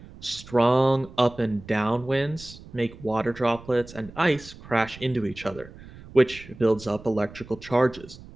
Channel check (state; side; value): noise; right; rumble, 18 dB below the sound